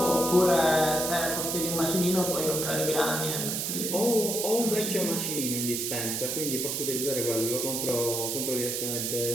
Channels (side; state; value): right; noise; hiss, 1 dB below the sound